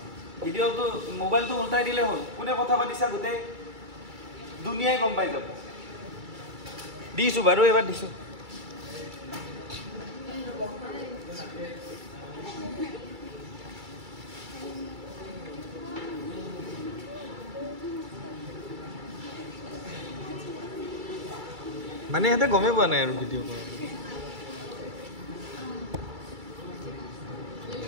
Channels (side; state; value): left; late; 2.3 ms